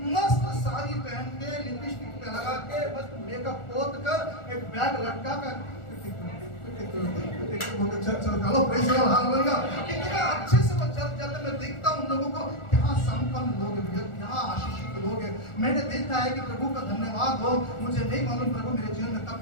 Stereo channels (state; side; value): late; right; 1.4 ms